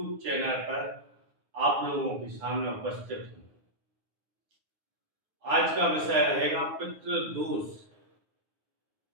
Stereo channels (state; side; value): late; left; 9.6 ms